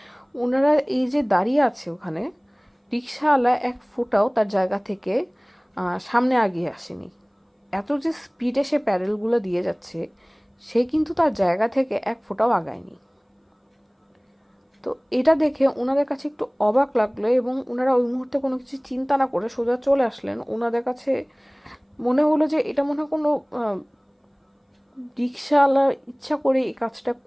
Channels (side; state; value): both; identical; correlation 1.00